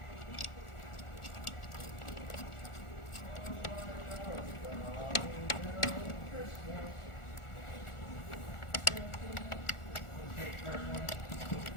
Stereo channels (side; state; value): right; late; 1.4 ms